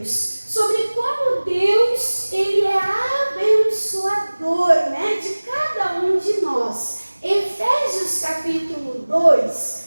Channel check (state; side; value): inverted; both; correlation -1.00